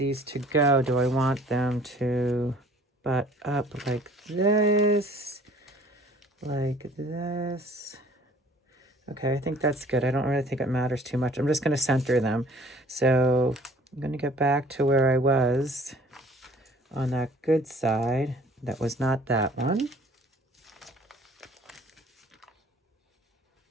to go. Do I want them to butt up like this? Like this? Okay, I think that's good. I don't really think it matters too much. I'm just going to center them. So I'm going to get back to where I was on that good side. That was not that one.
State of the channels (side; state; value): both; normal; correlation 0.53